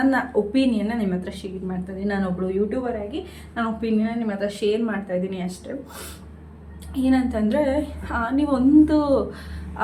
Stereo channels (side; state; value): both; identical; correlation 1.00